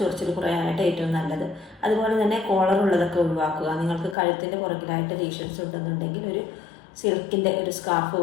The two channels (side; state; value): right; drops out; at 4.2 s